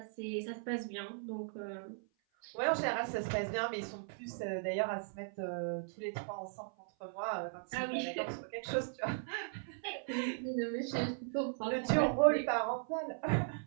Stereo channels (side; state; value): left; silent; 53 dB below the other